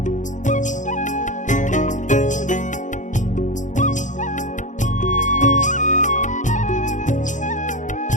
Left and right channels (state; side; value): late; right; 0.36 ms